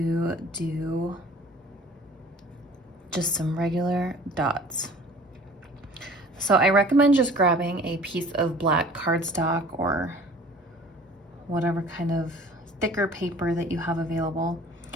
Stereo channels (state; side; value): normal; both; correlation 0.48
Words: do just some regular dots. So I recommend just grabbing a piece of black cardstock or whatever kind of thicker paper that you have available,